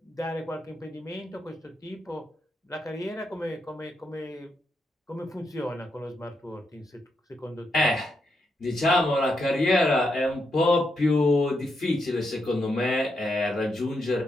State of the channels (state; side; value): normal; both; correlation 0.82